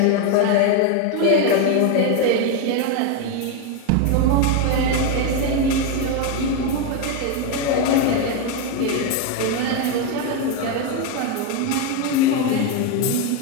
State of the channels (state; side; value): different; both; correlation 0.02